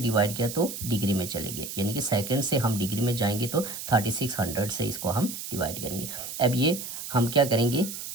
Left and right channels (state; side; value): noise; right; hiss, 8 dB below the sound